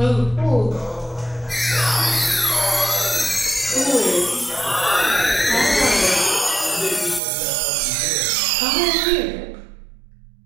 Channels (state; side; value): drops out; left; at 7.2 s